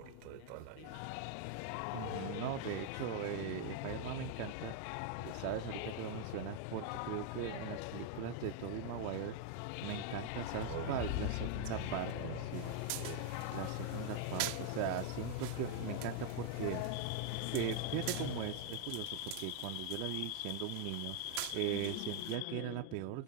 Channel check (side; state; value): both; different; correlation 0.00